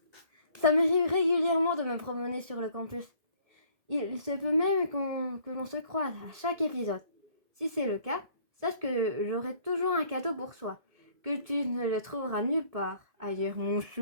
Ça m'arrive régulièrement de me promener sur le campus. Il se peut même que l'on se croise à chaque épisode. Si c'est le cas, sache que j'aurai toujours un cadeau pour toi, que tu ne le trouveras nulle part ailleurs, mon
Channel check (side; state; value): left; late; 2.1 ms